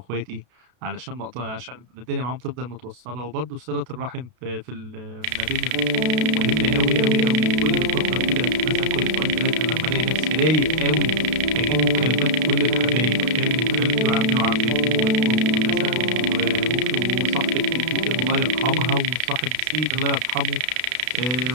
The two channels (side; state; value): left; late; 32 ms